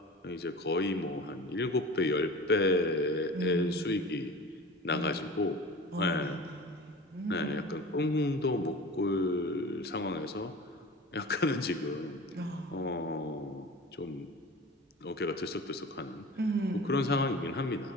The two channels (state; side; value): normal; both; correlation 0.37